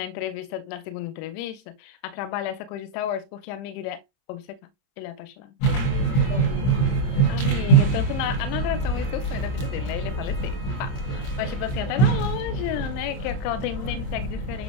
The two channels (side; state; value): right; late; 30 ms